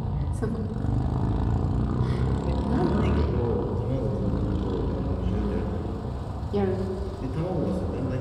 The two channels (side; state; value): both; identical; correlation 1.00